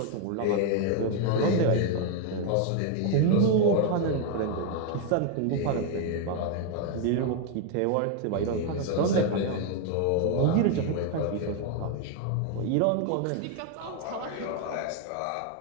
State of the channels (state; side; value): different; both; correlation 0.01